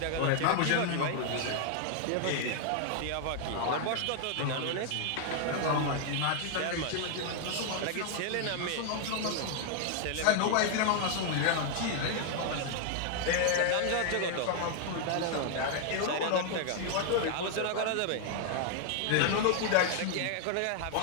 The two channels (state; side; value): different; both; correlation 0.00